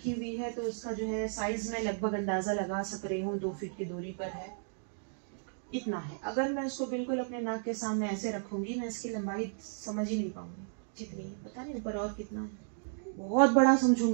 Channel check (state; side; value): silent; left; digital silence